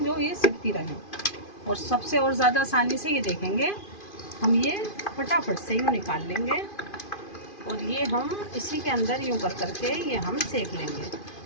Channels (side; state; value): right; late; 2.5 ms